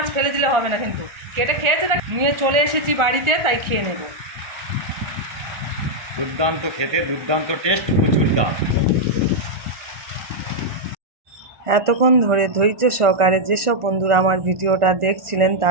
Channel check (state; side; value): late; left; 1.4 ms